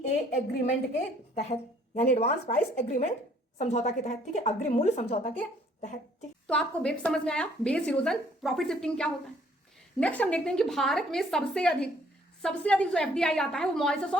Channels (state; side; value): normal; both; correlation 0.61